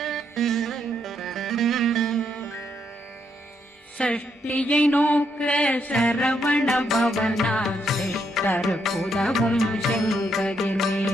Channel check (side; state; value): both; normal; correlation 0.76